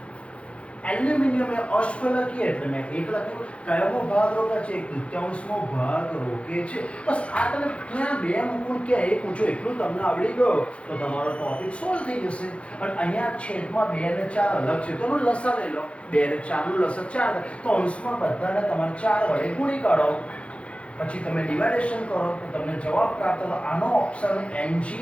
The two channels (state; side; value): late; right; 0.061 ms